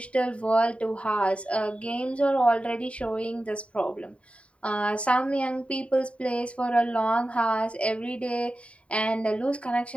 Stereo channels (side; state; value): right; late; 0.062 ms